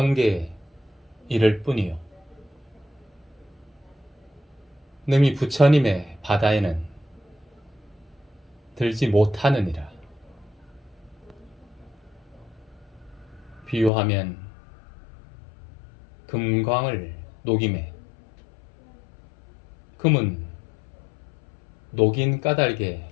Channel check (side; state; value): right; drops out; at 13.9 s